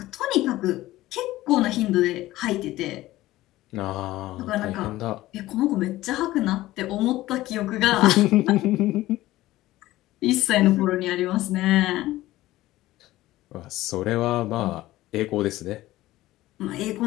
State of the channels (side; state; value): right; quieter; 16.5 dB